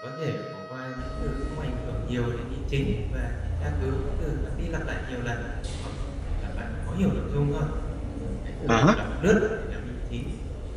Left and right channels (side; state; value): both; identical; correlation 1.00